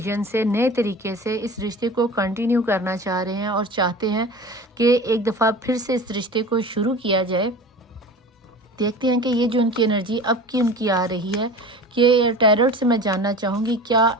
से, नए तरीके से इस रिश्ते को कंटिन्यू करना चाह रहे हैं और चाहते हैं कि एक दफ़ा फिर से इस रिश्ते को शुरू किया जाए। देखते हैं कि ये जो उनकी एनर्जी अब की उनकी आ रही है, कि टैरोट से मैं जानना चाहूँगी क्या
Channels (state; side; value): normal; both; correlation 0.36